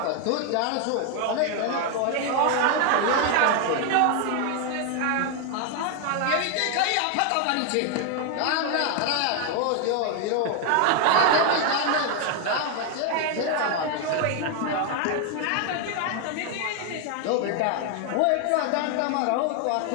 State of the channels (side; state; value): both; different; correlation 0.01